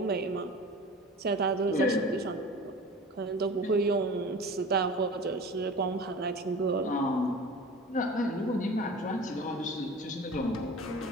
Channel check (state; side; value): normal; both; correlation 0.38